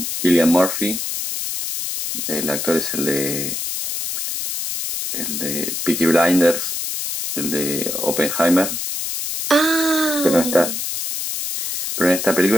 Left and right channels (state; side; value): noise; left; hiss, 4 dB below the sound